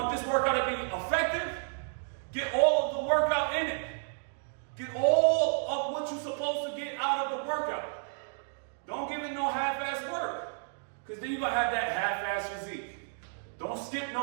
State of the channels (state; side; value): silent; left; digital silence